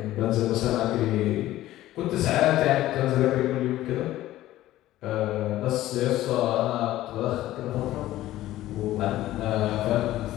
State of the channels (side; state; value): right; quieter; 15.0 dB